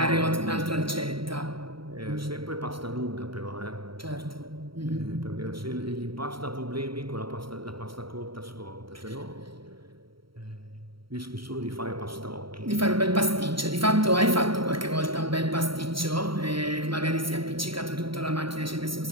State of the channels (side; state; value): left; late; 0.74 ms